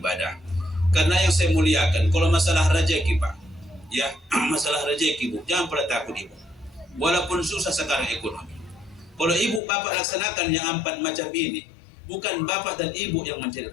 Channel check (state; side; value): drops out; right; at 9.6 s